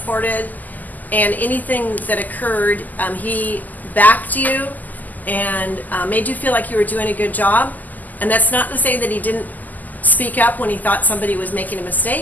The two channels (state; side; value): late; right; 0.082 ms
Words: and anything that occurred, he backed you and made you feel like you were doing a good job. And that's not to say that he didn't speak up when he thought somebody was making a